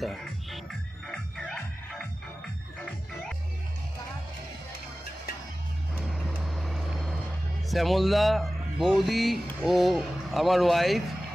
Shyamalda, বৌদি ও আমার ওয়াইফ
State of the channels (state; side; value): normal; both; correlation 0.96